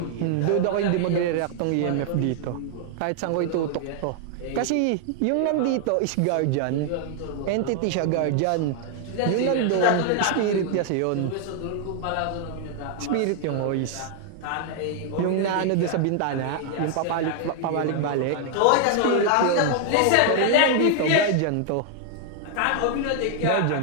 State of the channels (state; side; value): different; both; correlation 0.00